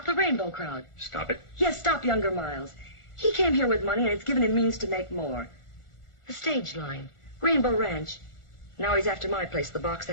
the rainbow crowd. Stop it. Yes, stop younger Miles. He came here with money, and it's given him means to make more. The stage line, Rainbow Ranch. Now he's after my place, the Box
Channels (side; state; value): right; late; 1.4 ms